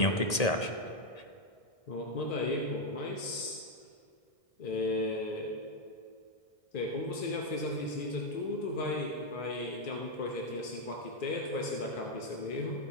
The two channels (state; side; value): late; right; 1.8 ms